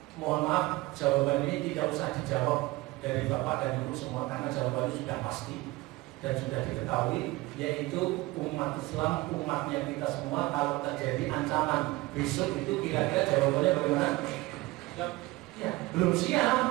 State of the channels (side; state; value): left; quieter; 20.6 dB